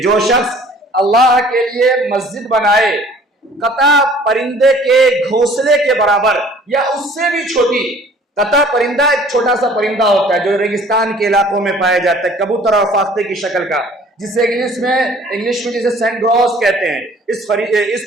جو شخص اللہ کے لیے مسجد بنائے قطع پرندے کے گھونسلے کے برابر یا اس سے بھی چھوٹی. قطع پرندہ ایک چھوٹا سا پرندہ ہوتا ہے جو ریگستان کے علاقوں میں پایا جاتا ہے، کبوتر اور فاختے کی شکل کا، جسے انگلش میں جسے سینٹ گراس کہتے ہیں. اس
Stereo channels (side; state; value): both; normal; correlation 0.52